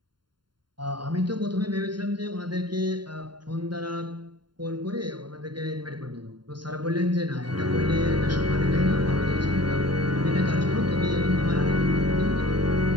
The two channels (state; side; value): late; left; 0.72 ms